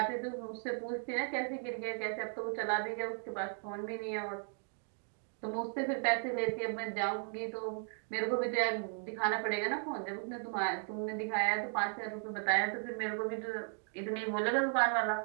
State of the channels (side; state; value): left; silent; 54 dB below the other